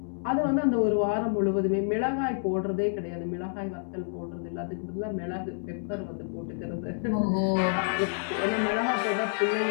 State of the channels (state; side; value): silent; right; digital silence